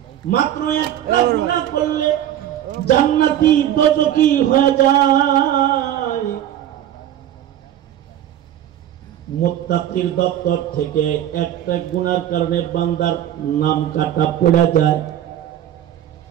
মাত্র একটা গুনাহ করলে জান্নাতি দোজখী হয়ে যায়। মুত্তাকির দপ্তর থেকে একটা গুনার কারণে বান্দার নাম কাটা পড়ে যায়।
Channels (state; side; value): quieter; left; 11.4 dB